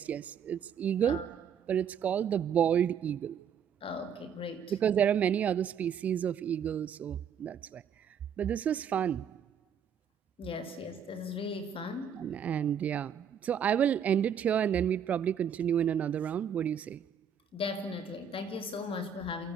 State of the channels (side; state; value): left; quieter; 7.4 dB